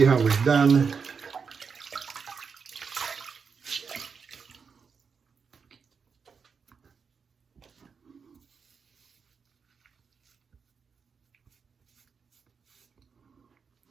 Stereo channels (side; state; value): left; quieter; 5.8 dB